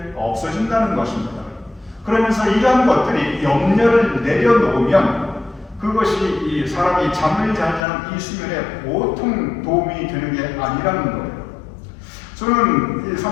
없어진다는 것입니다. 그러면서 이러한 것들이 염려를 내려놓으면 그것이 이 사람이 잠을 잘 자는 이 수면에 보통 도움이 되는 게 아니라는 거예요. 저는 이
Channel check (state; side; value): drops out; right; at 7.9 s